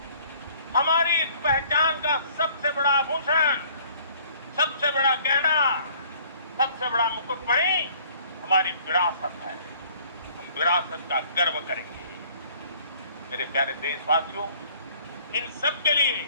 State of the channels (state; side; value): inverted; both; correlation -0.56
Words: हमारी इस पहचान का सबसे बड़ा आभूषण, सबसे बड़ा गहना, सबसे बड़ा मुकुटमणि हमारी विरासत है। हम विरासत का गर्व करेंगे। मेरे प्यारे देशवासियों, इन सब के लिए